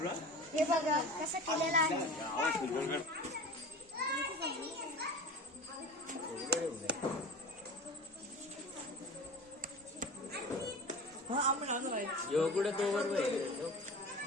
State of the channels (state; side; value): normal; both; correlation 0.35